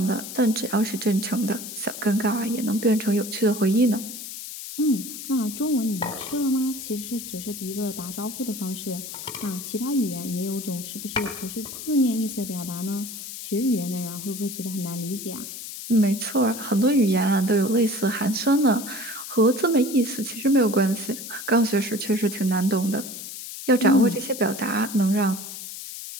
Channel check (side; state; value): left; noise; hiss, 10 dB below the sound